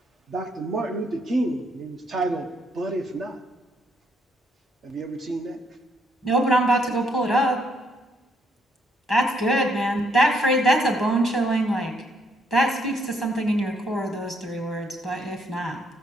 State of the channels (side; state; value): both; normal; correlation 0.72